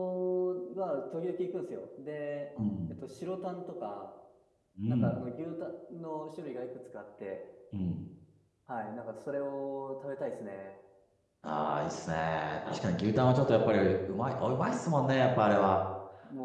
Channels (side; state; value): both; identical; correlation 1.00